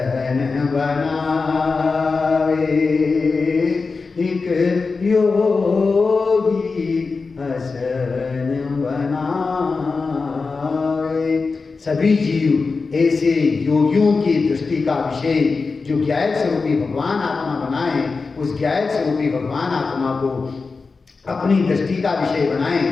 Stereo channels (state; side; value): quieter; right; 4.3 dB